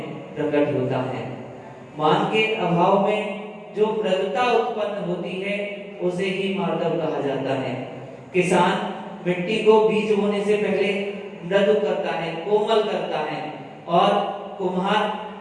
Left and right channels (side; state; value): both; identical; correlation 1.00